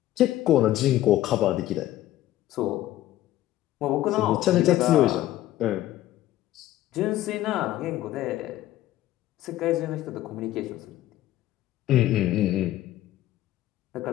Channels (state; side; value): quieter; right; 14.4 dB